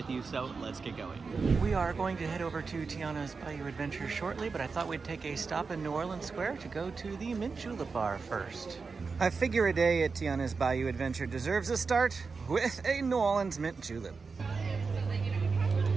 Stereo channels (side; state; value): left; quieter; 4.7 dB